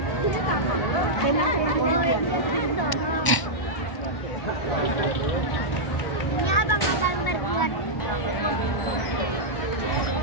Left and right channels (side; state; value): right; late; 1.0 ms